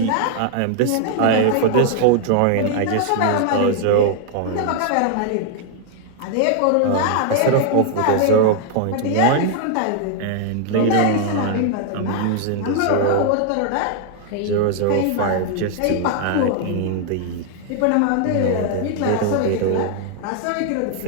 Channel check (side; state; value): both; different; correlation 0.00